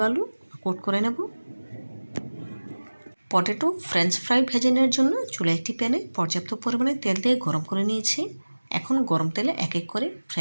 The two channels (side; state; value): both; inverted; correlation -1.00